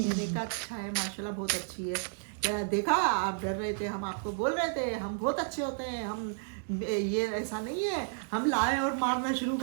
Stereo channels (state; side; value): silent; left; digital silence